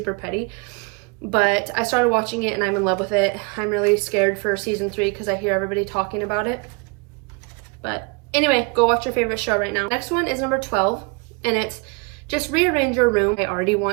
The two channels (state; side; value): quieter; left; 31.8 dB